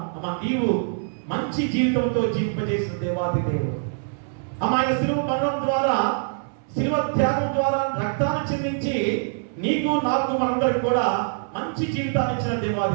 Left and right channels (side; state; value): left; silent; 62 dB below the other